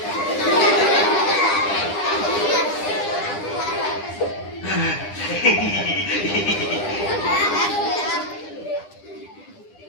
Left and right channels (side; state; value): right; late; 9.9 ms